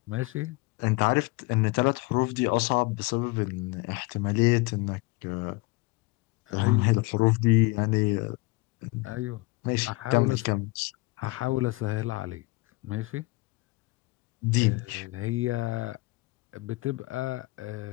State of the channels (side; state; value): right; quieter; 23.4 dB